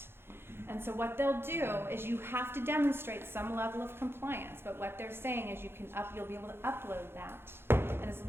And so what they'll do is you have to demonstrate some level of compliance, but what they're saying is you'll be able to upload that. And as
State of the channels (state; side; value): late; left; 0.11 ms